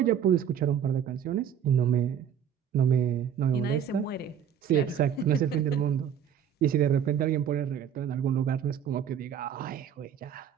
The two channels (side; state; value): left; quieter; 8.7 dB